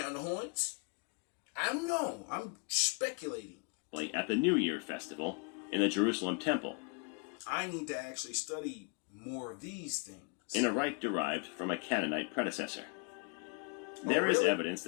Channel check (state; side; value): quieter; right; 35.3 dB